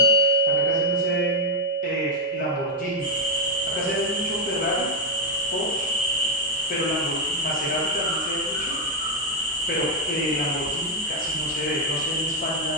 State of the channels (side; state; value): both; normal; correlation 0.02